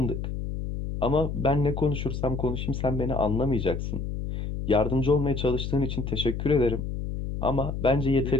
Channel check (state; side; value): noise; left; hum, 4 dB below the sound